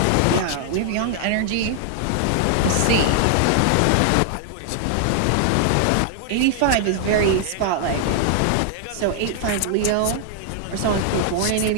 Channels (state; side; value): different; both; correlation 0.00